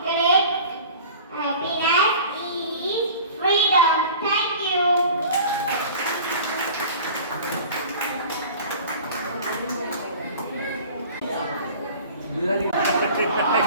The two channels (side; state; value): both; inverted; correlation -0.42